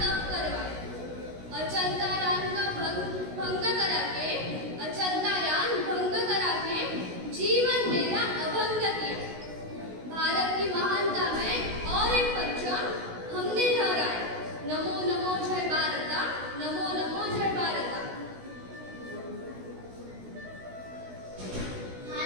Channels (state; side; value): late; left; 16 ms